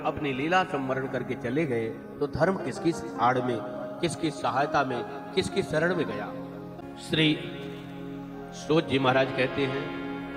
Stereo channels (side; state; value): both; identical; correlation 1.00